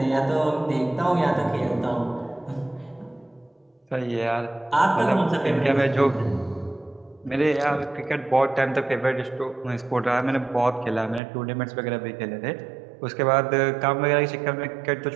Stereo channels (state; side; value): drops out; left; at 11.2 s